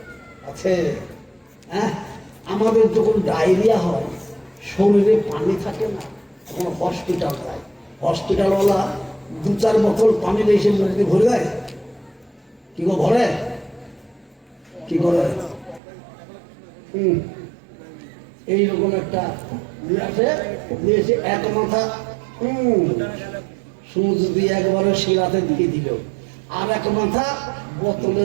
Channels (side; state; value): left; drops out; at 15.8 s